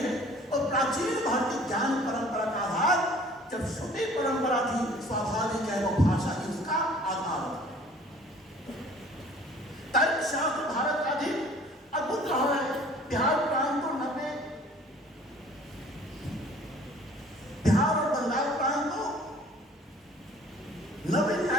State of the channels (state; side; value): normal; both; correlation 0.52